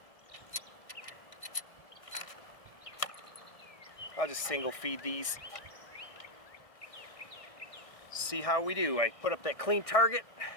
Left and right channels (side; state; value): right; late; 1.6 ms